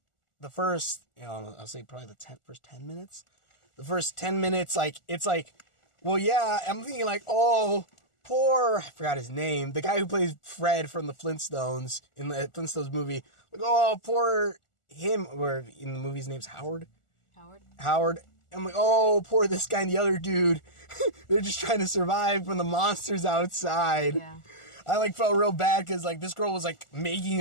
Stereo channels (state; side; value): late; right; 1.4 ms